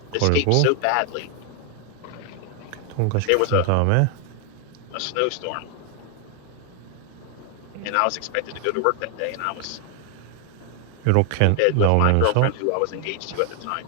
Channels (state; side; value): different; both; correlation 0.00